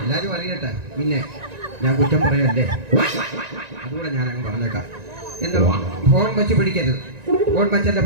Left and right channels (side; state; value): left; late; 1.9 ms